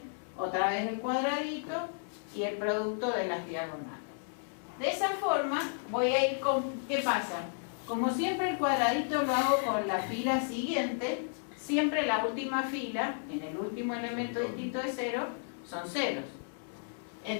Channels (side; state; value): right; silent; digital silence